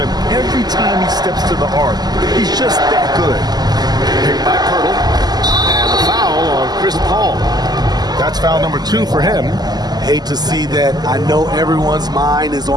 every time he steps to the arc. He's just that good. Picked by Poeltl. And the foul on Chris Paul. That's foul number 2 for him. Hate to see that. I know everyone's mind is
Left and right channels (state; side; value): late; left; 0.20 ms